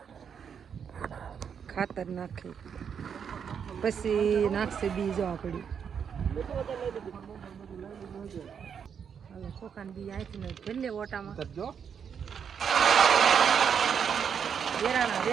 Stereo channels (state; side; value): quieter; left; 7.3 dB